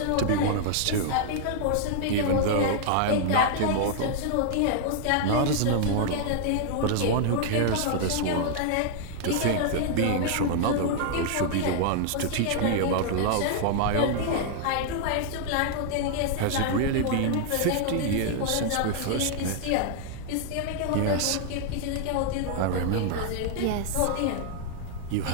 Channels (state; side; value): different; both; correlation 0.00